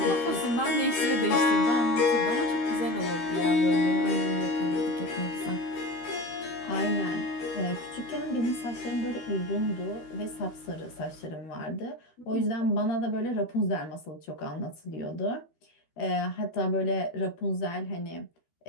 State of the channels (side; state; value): right; late; 13 ms